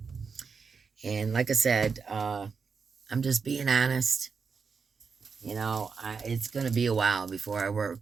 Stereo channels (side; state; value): left; quieter; 5.5 dB